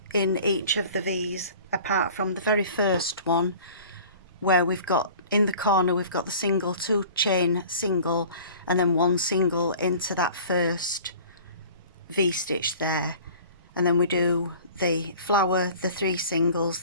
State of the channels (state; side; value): inverted; both; correlation -0.45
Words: in each of the V's, apart from the very first one where we've got in the corner we've got the single, 2 chain single, and then 1 single into that first V stitch there, and then we do the flower, the 3 singles,